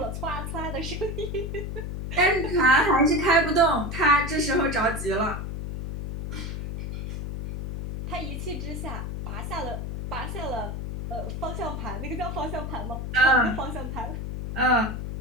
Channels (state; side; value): noise; left; hum, 5 dB below the sound